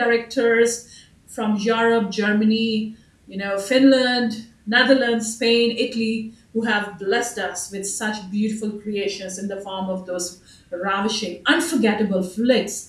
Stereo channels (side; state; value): both; identical; correlation 1.00